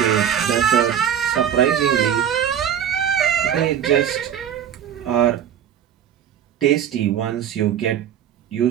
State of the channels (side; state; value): left; quieter; 9.4 dB